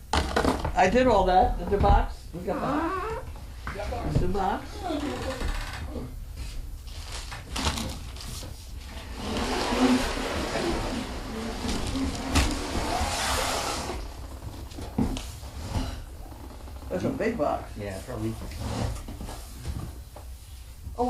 I did all that. Did the box? We got that. The box. That's a big box. Yeah, probably.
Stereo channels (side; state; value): both; identical; correlation 1.00